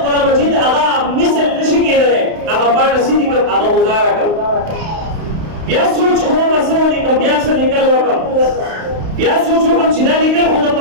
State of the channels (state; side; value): late; left; 31 ms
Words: قرآن مجید هغه مثل نشي کېدلی، هغه پاڼه سیدې کړم، هغه گزاره کړم. بیا سوچ وکړم څه ولیکم، بیا څه لیکل وکړم، بیا سوچ وکړم چې دا لیکل خو د